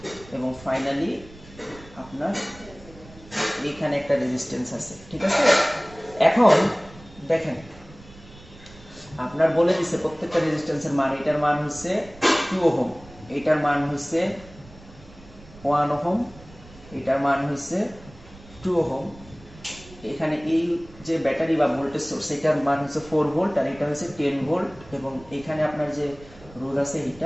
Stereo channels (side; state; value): right; noise; rumble, 21 dB below the sound